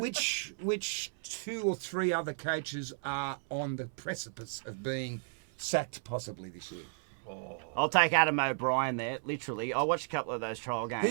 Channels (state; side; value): silent; left; 55 dB below the other